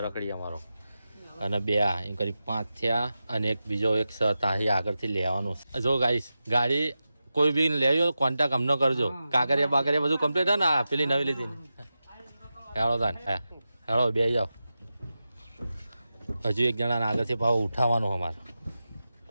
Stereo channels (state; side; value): inverted; both; correlation -0.92